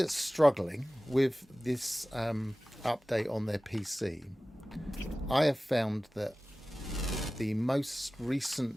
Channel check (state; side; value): normal; both; correlation 0.97